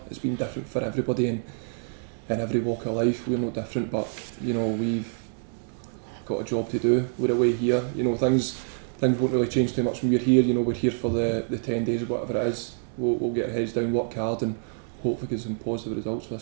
It's been different for everybody in every walk of life. We're no different, but you know we've got a job to do. We're away here. You know things won't really change too much when we're here. You know we're here for the 10 days or whatever it is. We'll get our heads down, work hard, and hopefully get some positive results for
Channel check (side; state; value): left; silent; digital silence